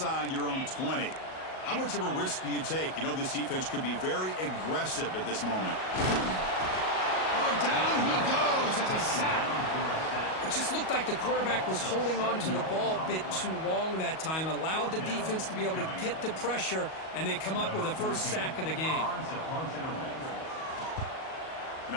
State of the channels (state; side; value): late; right; 38 ms